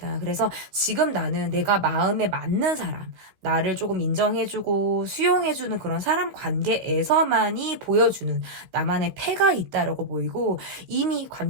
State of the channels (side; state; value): left; late; 15 ms